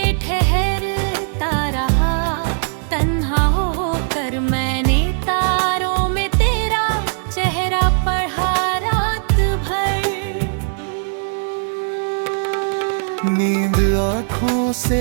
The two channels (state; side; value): silent; left; digital silence